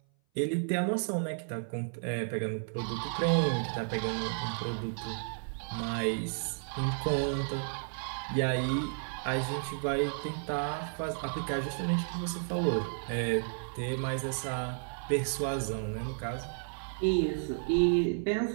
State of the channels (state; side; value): silent; left; 56 dB below the other